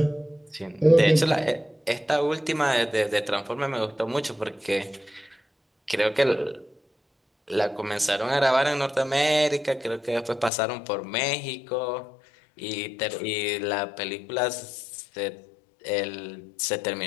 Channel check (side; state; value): right; drops out; at 10.5 s